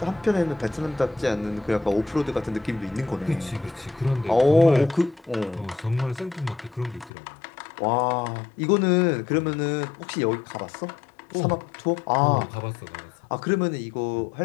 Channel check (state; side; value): drops out; right; at 7.1 s